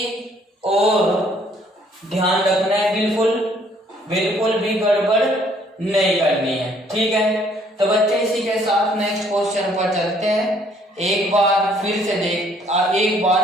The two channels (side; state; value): both; normal; correlation 0.63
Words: और ध्यान रखना है, बिल्कुल भी गड़बड़ नहीं करनी है, ठीक है। तो बच्चे इसी के साथ नेक्स्ट क्वेश्चन पर चलते हैं। एक बार फिर